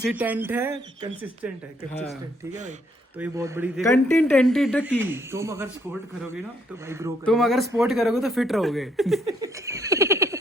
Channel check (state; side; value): normal; both; correlation 0.70